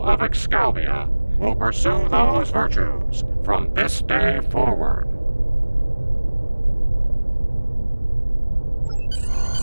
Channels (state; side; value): inverted; both; correlation -1.00